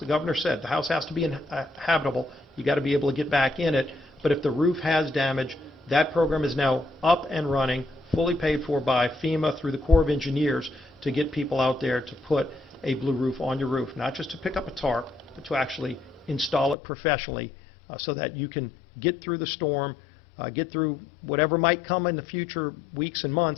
governor said, the house has to be habitable. You got to be able to get back in it. But if the roof has damage, that program is now up and running, fully paid for by FEMA through the Corps of Engineers to get people out there to put a blue roof on your roof, not just to pick up a tarp, but to actually install it professionally so that you can get through the storm, get through whatever might come in the future weeks and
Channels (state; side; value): drops out; right; at 16.8 s